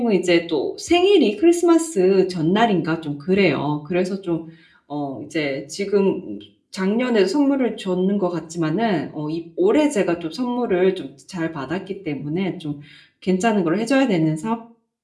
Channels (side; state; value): both; identical; correlation 1.00